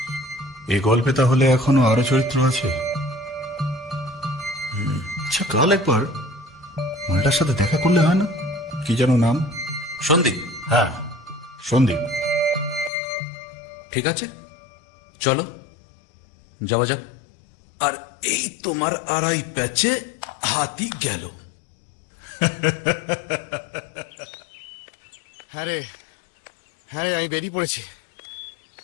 এই গল্পে তাহলে এখনো আরো চরিত্র আছে। আচ্ছা, কাল একবার মালটার সাথে দেখা করলে হয় না? কি যেন নাম? সন্দীপ। হ্যাঁ, সন্দীপ। ঠিক আছে, চলো যাওয়া যাক। আর এই তোমার আড়াই ব্যাচে হাতি গেল। হ্যাঁ রে, হ্যাঁ আমি বেরিয়ে পড়েছি।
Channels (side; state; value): right; drops out; at 12.9 s